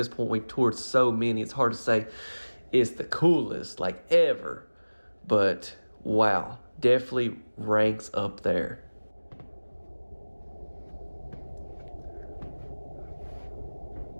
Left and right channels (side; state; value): both; inverted; correlation -1.00